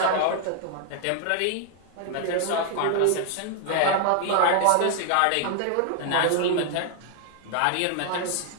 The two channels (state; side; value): different; both; correlation 0.00